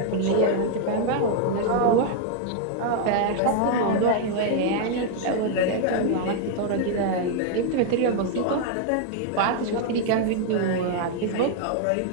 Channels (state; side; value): different; both; correlation 0.00